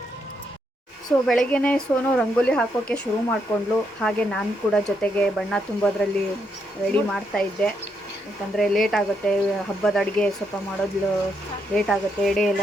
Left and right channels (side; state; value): both; normal; correlation 0.78